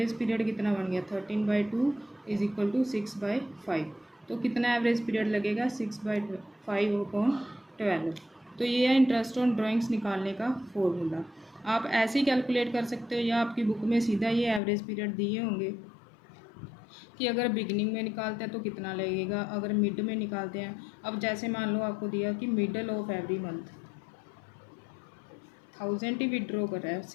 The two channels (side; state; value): right; drops out; at 14.6 s